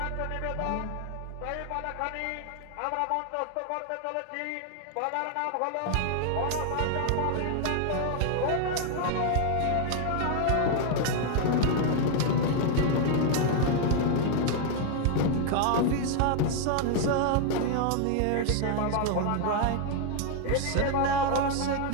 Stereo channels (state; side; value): different; both; correlation 0.00